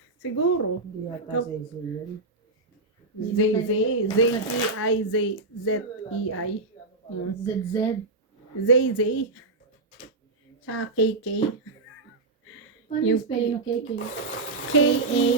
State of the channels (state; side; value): quieter; left; 3.3 dB